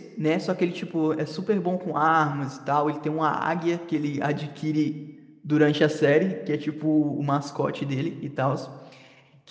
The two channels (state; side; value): identical; both; correlation 1.00